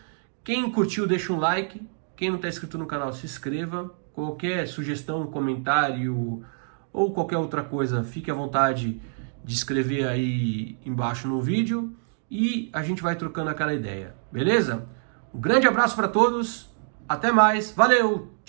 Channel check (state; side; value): silent; left; digital silence